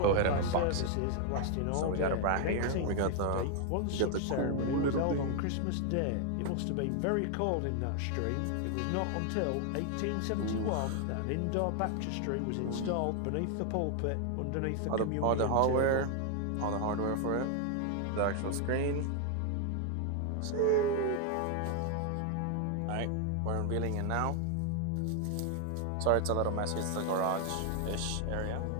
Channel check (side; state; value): both; different; correlation 0.00